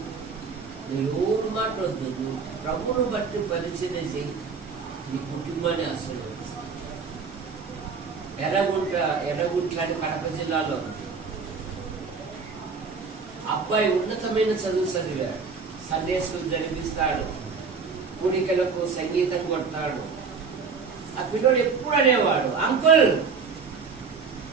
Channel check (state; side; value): quieter; left; 5.2 dB